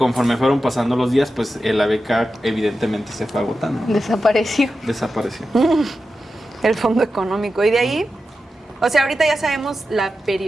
fueron pasando los días, pues la beca evidentemente se fue agotando. Desapareció. El fondo económico. Y de ahí, o sea, ahorita ya sabemos la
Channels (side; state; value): both; normal; correlation 0.91